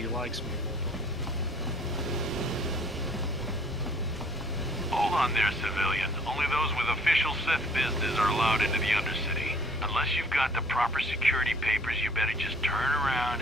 likes me. Hold on there, civilian. Only those with official Sith business are allowed into the Undercity. Unless you've got the proper security papers, you better just turn around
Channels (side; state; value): both; normal; correlation 0.56